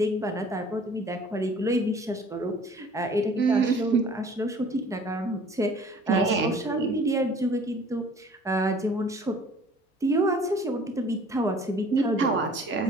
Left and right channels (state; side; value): normal; both; correlation 0.51